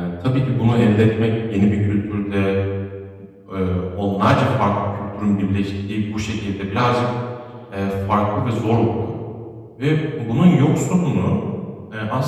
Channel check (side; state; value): both; identical; correlation 1.00